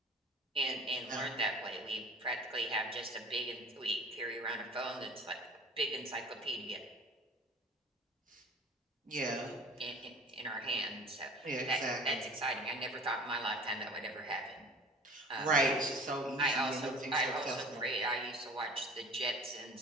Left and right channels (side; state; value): both; normal; correlation 0.44